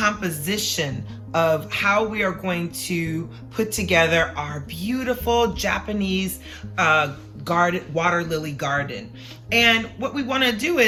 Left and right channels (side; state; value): both; identical; correlation 1.00